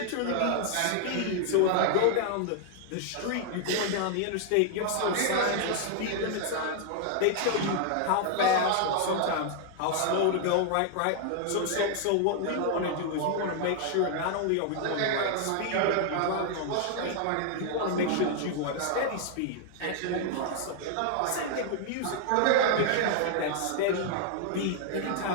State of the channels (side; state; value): both; different; correlation 0.00